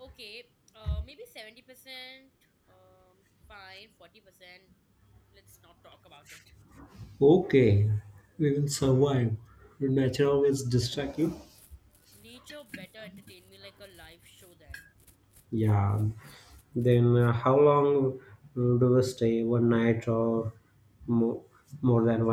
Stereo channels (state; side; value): identical; both; correlation 1.00